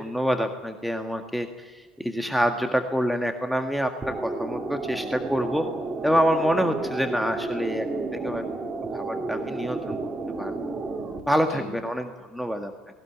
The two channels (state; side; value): normal; both; correlation 0.86